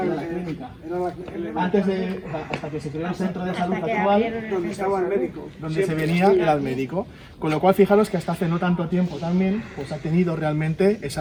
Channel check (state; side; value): identical; both; correlation 1.00